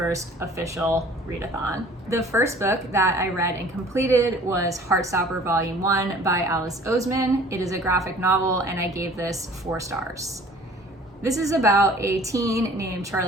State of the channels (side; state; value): both; normal; correlation 0.49